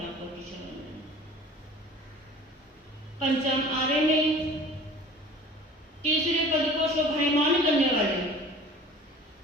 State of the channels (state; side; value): normal; both; correlation 0.44